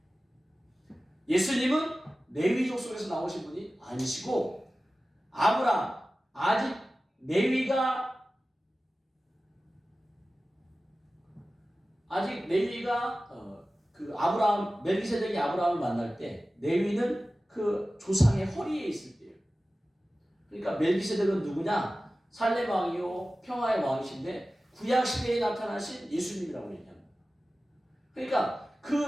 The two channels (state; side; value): normal; both; correlation 0.96